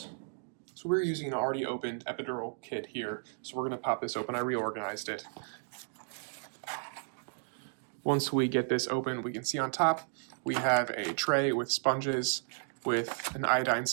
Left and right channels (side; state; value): left; silent; digital silence